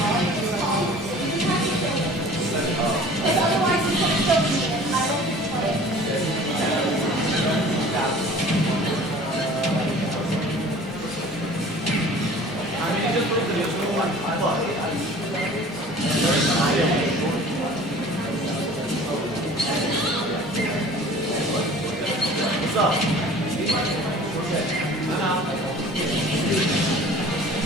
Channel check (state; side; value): normal; both; correlation 0.46